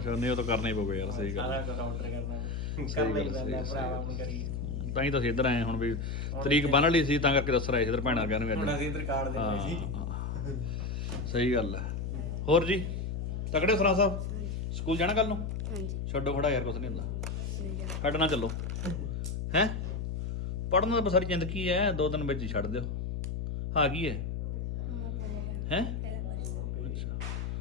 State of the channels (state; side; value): noise; left; hum, 3 dB below the sound